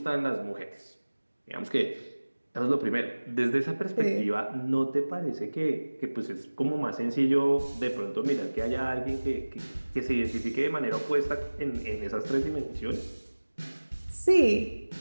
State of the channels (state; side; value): inverted; both; correlation -1.00